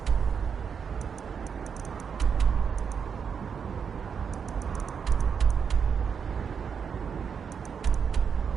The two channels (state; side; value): quieter; left; 6.7 dB